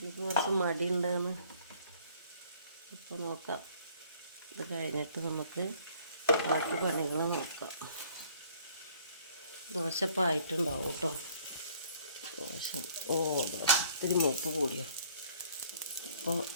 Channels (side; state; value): both; inverted; correlation -0.58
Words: കുറച്ച് മടിയുണ്ടെന്ന്? ഇപ്പോൾ നോക്കാം. ഇത് കഴിഞ്ഞിട്ട് നമുക്ക് ബാക്കി പണികൾ നോക്കാം. ദോശ ഇപ്പം ആയിട്ടുണ്ടാവും കേട്ടോ. ദോശ ഇത്തിരി മൂപ്പ് കൂടിയോ. അപ്പോൾ